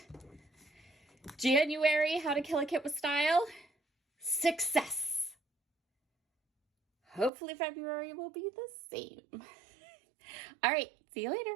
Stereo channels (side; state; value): left; drops out; at 7.3 s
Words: January, how to kill a kit with style, success. Hopefully February will be the same. All right, see you later.